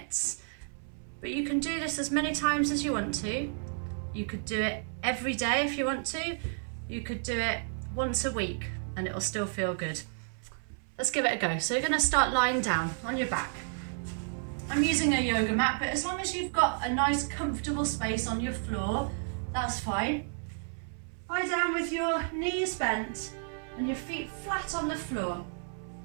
but you can do this as many times as you want to. You could do it every day if you want to. You could do it once a week and it'll still feel good. Let's give it a go. So you're going to start lying down on your back. I'm using a yoga mat, but as long as you've got a nice comfortable space on your floor, that's fine. Lie down with your knees bent and your feet flat on the floor.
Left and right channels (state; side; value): silent; left; 57 dB below the other